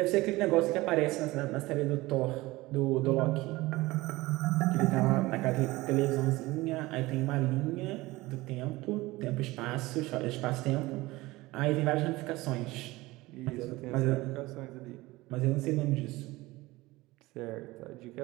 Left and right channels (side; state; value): left; quieter; 20.0 dB